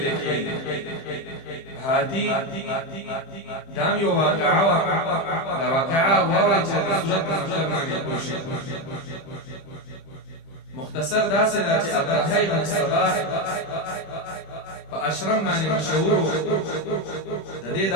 کېږي. هاتي دام یو واقعه وا، دا واقعه واورئ چې د سورت په مطلب باندې پوه شئ. مختصر داسې ده چې ابرهه بن صباح په اشرم باندې مشهور و. د دې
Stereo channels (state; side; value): late; right; 30 ms